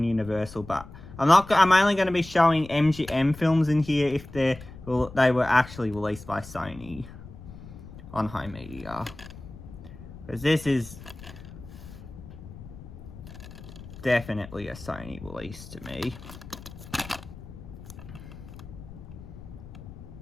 Universal, but I'm only going to be showing MGM films in here if they were actually released by Sony on home media, because this is definitely a Sony release to me.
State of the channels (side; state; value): left; noise; rumble, 15 dB below the sound